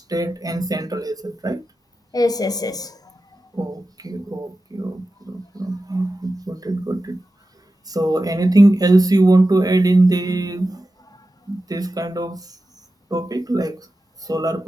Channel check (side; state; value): both; normal; correlation 0.93